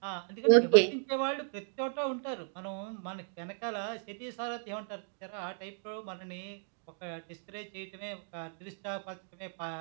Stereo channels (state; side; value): silent; left; digital silence